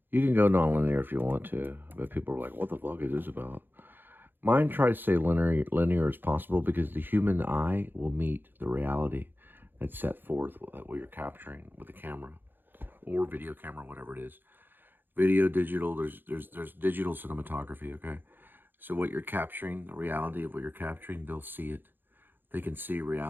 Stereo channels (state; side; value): late; left; 0.096 ms